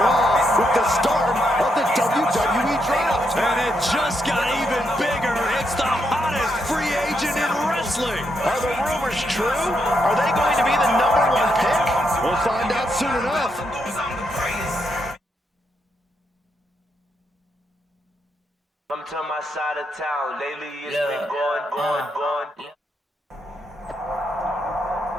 Raw with the start of the WWE Draft. And it just got even bigger. It's the hottest free agent in wrestling. Are the rumors true? Are they going to be the #1 pick? We'll find out soon enough. Come to my side of town. Lately it's been going.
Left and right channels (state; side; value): normal; both; correlation 0.80